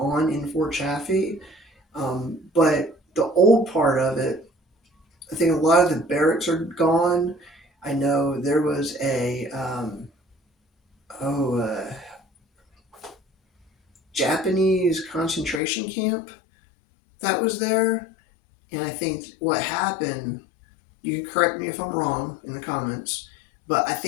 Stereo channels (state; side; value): drops out; right; at 15.6 s